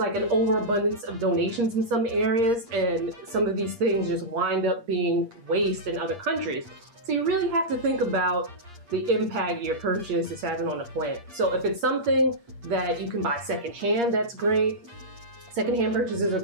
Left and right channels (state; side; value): late; left; 8.5 ms